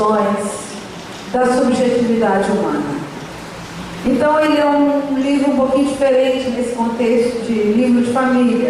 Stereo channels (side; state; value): both; identical; correlation 1.00